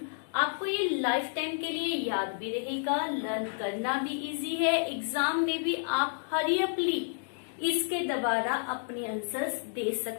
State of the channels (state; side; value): silent; right; digital silence